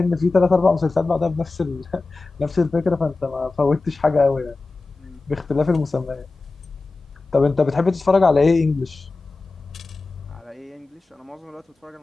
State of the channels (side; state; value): right; quieter; 3.6 dB